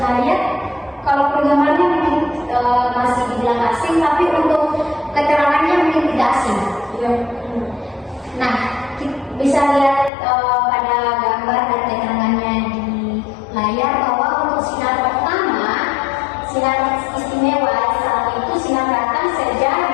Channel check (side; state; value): right; drops out; at 10.1 s